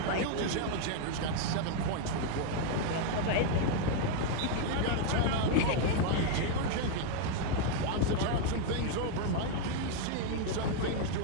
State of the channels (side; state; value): both; different; correlation 0.00